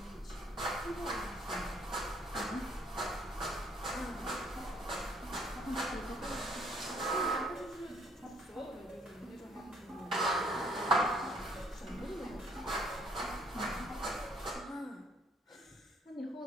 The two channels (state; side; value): normal; both; correlation 0.63